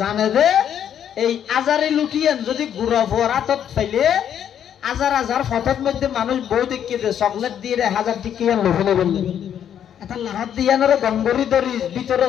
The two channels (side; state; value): right; quieter; 9.4 dB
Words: দে এই আজারি লুটিয়েন যদি গুড়া ভুয়ার হাতত ফেলে হাজার হাজার ফটোর মধ্যে মানুষ বউ দেখিয়ে দে চকলেট দিয়ে 1000 টিকিয়ান লোভনে বললে এটা লাহাত দিয়ানোর গঙ্গরি ধরি ভিতরে